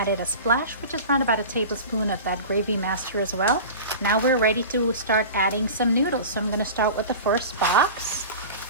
a splash, which is around about a tablespoon of that gravy master as well. Now we're ready to start adding some noodles. So I'm gonna start with the first box.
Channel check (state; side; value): inverted; both; correlation -0.34